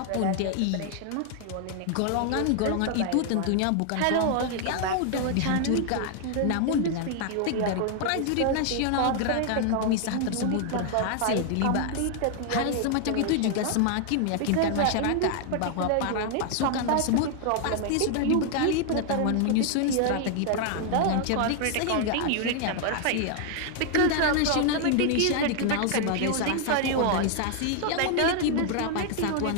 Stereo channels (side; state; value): both; different; correlation 0.00